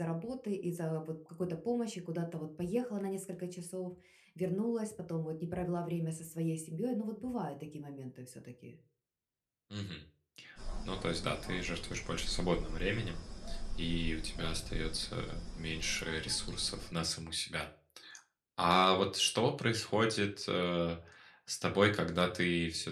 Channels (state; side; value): identical; both; correlation 1.00